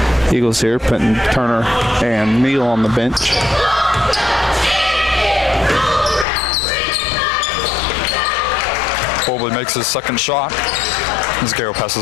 Eagles here, putting Turner and Neal on the bench. Bobley makes his second shot. As Gale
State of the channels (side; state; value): right; drops out; at 6.2 s